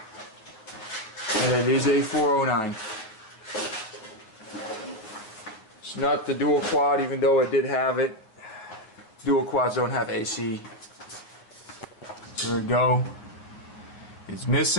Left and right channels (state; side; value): late; right; 9.2 ms